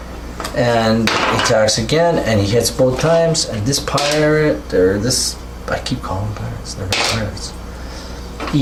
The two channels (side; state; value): both; identical; correlation 1.00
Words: and he attacks again, and he hits both times. And this pirate, or this, I keep calling them pirates. They're not pirates.